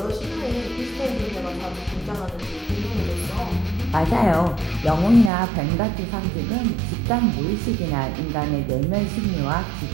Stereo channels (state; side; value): drops out; left; at 5.3 s